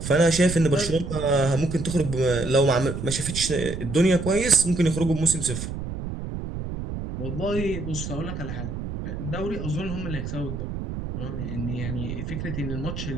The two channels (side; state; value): right; noise; rumble, 6 dB below the sound